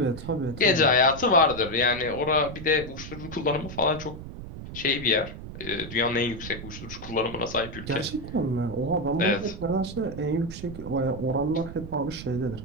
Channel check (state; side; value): noise; right; rumble, 11 dB below the sound